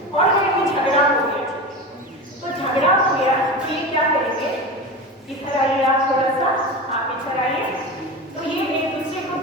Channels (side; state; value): both; normal; correlation 0.26